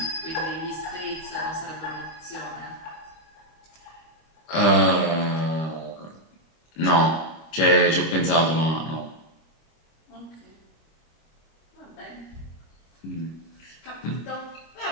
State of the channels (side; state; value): right; late; 25 ms